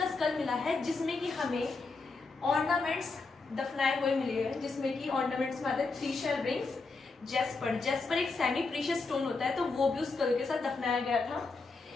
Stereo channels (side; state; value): right; quieter; 4.0 dB